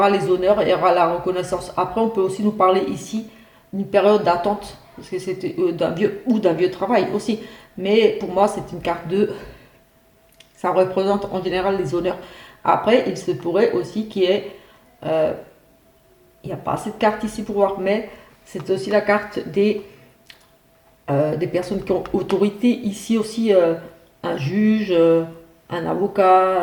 les honneurs, il y aura la reconnaissance. Après on peut aussi nous parler ici d'une période d'attente, parce que c'était d'un vieux travail aussi. Mais pour moi, c'est une carte de. Ça représente en général les honneurs. Après, il se pourrait aussi qu'il y ait. euh, il n'y a pas assez de cartes ici pour voir, mais c'est aussi la carte des personnes qui ont autorité. Ici aussi, un juge, un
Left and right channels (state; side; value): identical; both; correlation 1.00